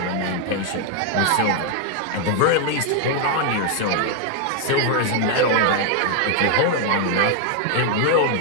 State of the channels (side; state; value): both; different; correlation 0.00